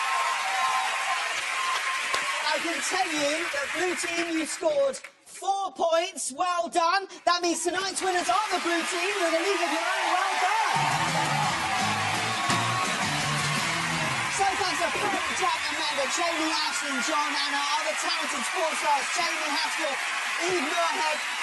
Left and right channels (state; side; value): identical; both; correlation 1.00